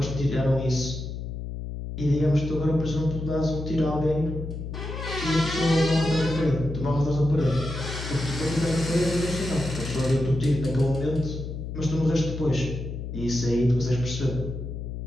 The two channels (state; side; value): noise; left; hum, 7 dB below the sound